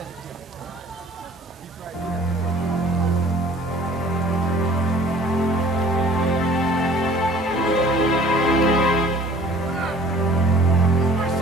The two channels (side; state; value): both; normal; correlation 0.51